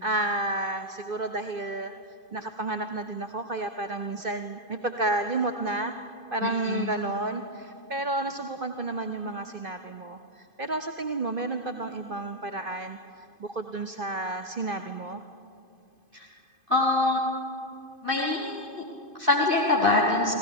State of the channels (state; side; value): late; left; 2.5 ms